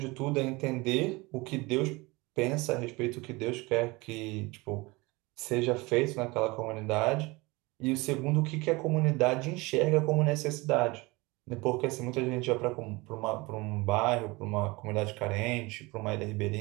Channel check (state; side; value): quieter; left; 23.8 dB